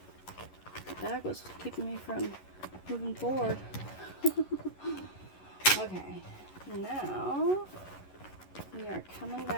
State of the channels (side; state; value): right; late; 11 ms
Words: bag was keeping me from moving forward. Okay, now we are coming